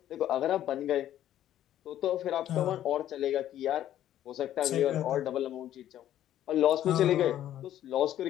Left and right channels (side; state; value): right; quieter; 12.0 dB